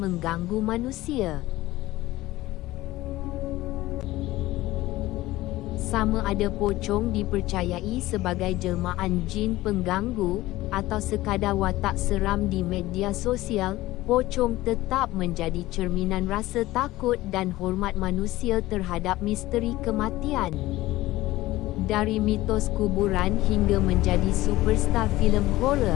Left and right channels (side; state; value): right; quieter; 17.3 dB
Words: manusia. Sama ada pocong dipercayai sebagai jelmaan jin pengganggu, atau sekadar watak seram di media sosial, pocong tetap menjadi cerminan rasa takut dan hormat manusia terhadap misteri kematian. Dari mitos kuburan hingga menjadi superstar filem